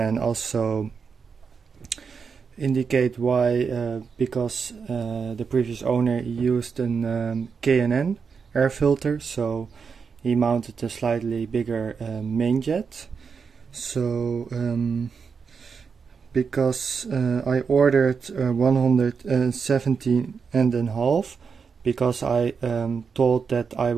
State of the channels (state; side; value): quieter; left; 5.8 dB